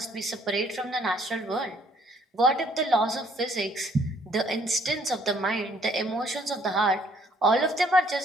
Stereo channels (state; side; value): normal; both; correlation 0.63